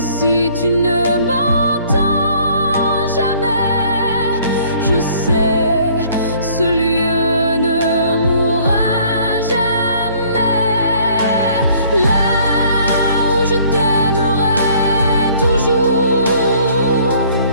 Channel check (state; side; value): inverted; both; correlation -0.58